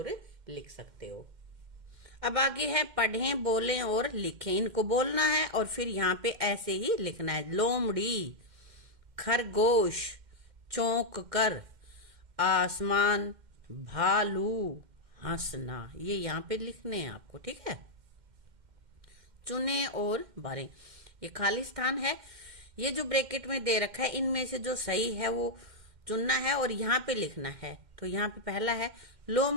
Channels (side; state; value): left; late; 2.1 ms